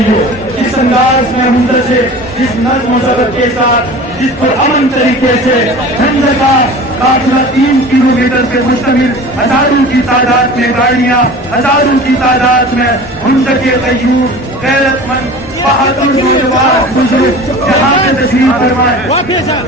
इस अंदाज में मुंदर से, जिस नज़्म व ज़ब्त के साथ, जिस पर अमन तरीके से झंडे का काफिला 3 किलोमीटर से मुश्तमिल, हजारों की तादाद में गाड़ियां, हजारों की तादाद में मुंदर के कयूर गैरतमंद बहादुर नौजवान बुजुर्ग यहाँ पे तशरीफ फरमाए।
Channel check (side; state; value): both; normal; correlation 0.39